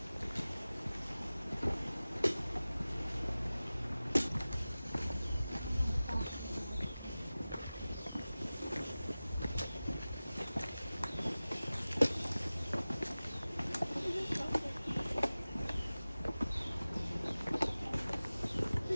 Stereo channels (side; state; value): both; inverted; correlation -0.97